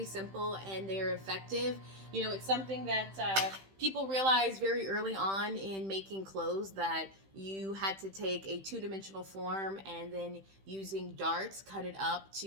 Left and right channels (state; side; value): late; left; 15 ms